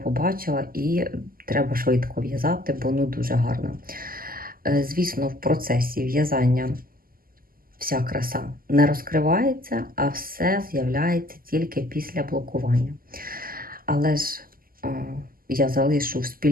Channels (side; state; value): left; late; 0.42 ms